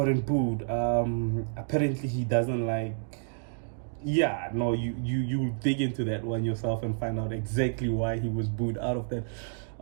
booed. Apparently he doesn't like, yeah, no, you dig into that one yourself and find out exactly why he was booed out of that.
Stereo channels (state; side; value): silent; left; digital silence